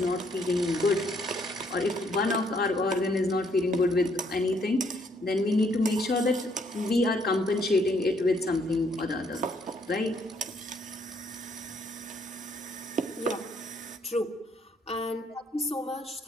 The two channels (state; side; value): normal; both; correlation 0.69